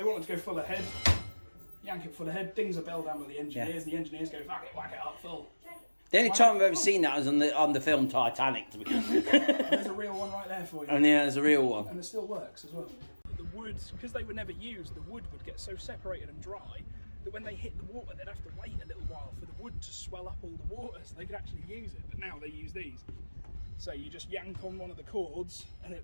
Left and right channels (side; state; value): both; inverted; correlation -1.00